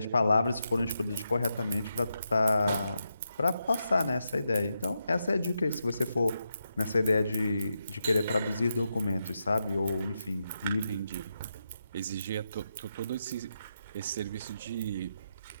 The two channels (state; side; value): inverted; both; correlation -0.85